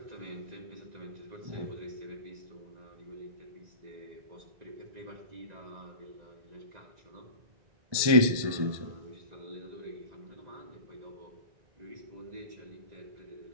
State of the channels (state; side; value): late; left; 1.3 ms